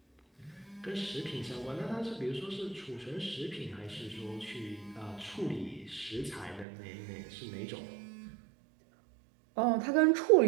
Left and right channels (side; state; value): left; drops out; at 6.7 s